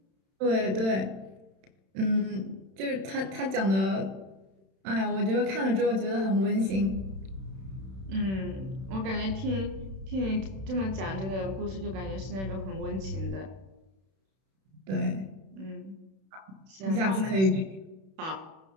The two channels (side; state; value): left; late; 31 ms